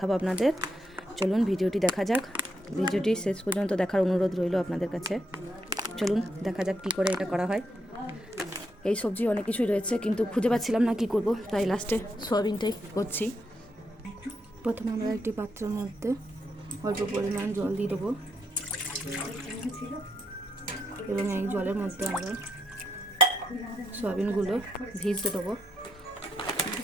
আপনাদের। চলুন ভিডিওটি দেখা যাক, ভিডিওটি শেষ পর্যন্ত দেখার অনুরোধ রইল আপনাদের কাছে। চলুন দেখা যাক কী করে এটা করা হয়। এই সবজি অনেক কিছুই রয়েছে, কিন্তু খুঁজে পাচ্ছিলাম না কি করব, তাই লাস্টে সয়াবিনটাই করছি। প্রথমে আমরা একটি পাত্রের মধ্যে অল্প পরিমাণ জল দিয়ে দেবো এবং এই জলের মধ্যে আমরা সয়াবিনগুলো ভিজতে দেবো।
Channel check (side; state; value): both; normal; correlation 0.79